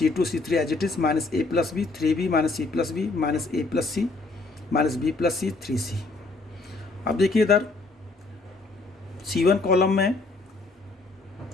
C3 as it is minus a plus b 3b minus c plus b minus a plus C minus b plus C 3c। अब देखिए इधर C1 कॉलम में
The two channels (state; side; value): quieter; right; 3.5 dB